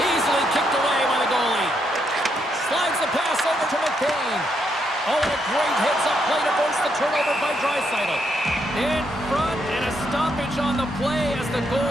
kicked away by the goalie. Slides the pass over to McCain. Oh, and a great hits-up play to force the turnover by Draisaitl. In front, and a stoppage on the play as the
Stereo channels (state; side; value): normal; both; correlation 0.77